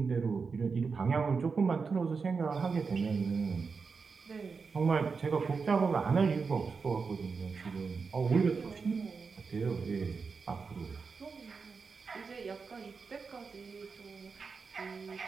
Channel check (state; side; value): quieter; left; 5.0 dB